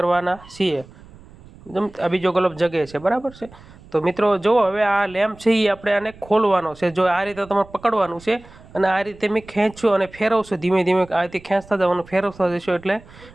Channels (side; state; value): right; noise; rumble, 22 dB below the sound